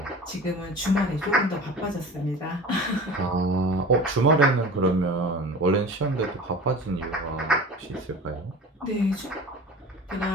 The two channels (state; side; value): normal; both; correlation 0.37